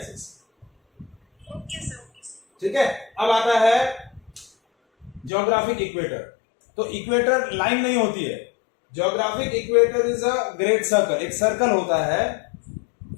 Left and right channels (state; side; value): drops out; right; at 5.3 s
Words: ठीक है, अब आता है ज्योग्राफिक इक्वेटर। तो इक्वेटर लाइन नहीं होती है, geographic equator is a great circle, एक सर्कल होता है।